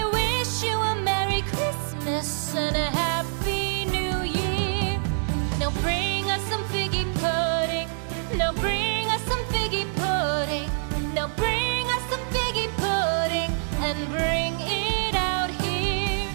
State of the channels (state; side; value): silent; left; digital silence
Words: wish you a Merry Christmas and a Happy New Year. Now bring us some figgy pudding. Now bring us some figgy pudding. Now bring us some figgy pudding and bring it out here.